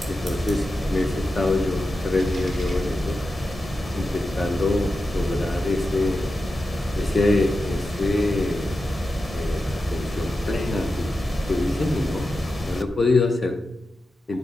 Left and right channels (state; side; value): normal; both; correlation 0.91